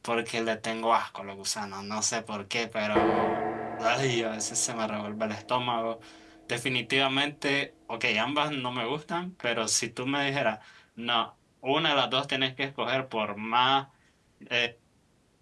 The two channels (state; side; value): identical; both; correlation 1.00